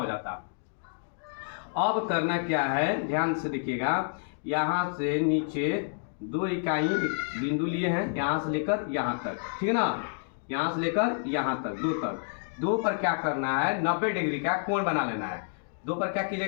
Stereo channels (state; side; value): silent; right; digital silence